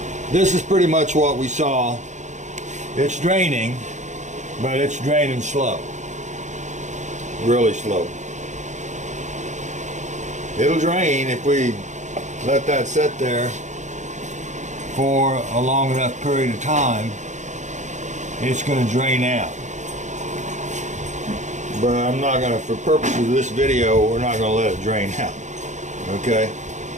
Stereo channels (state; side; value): late; left; 0.35 ms